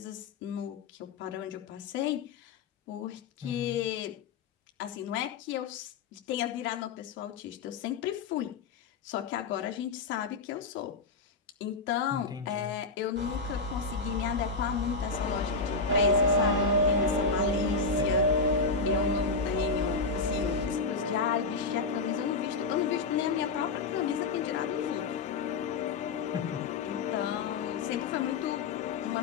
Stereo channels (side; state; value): right; quieter; 4.3 dB